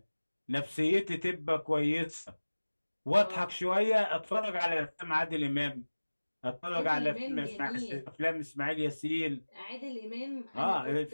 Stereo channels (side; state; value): both; inverted; correlation -1.00